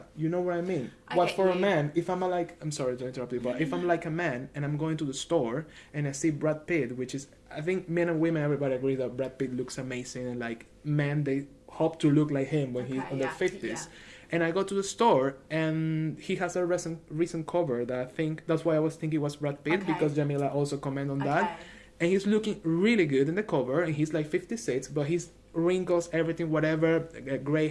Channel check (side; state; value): both; identical; correlation 1.00